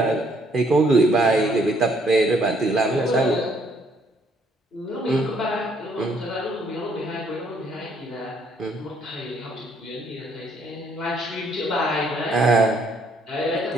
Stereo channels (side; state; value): both; normal; correlation 0.67